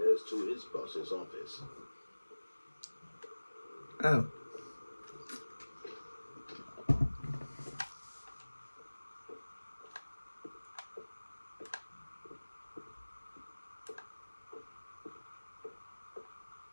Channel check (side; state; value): both; inverted; correlation -1.00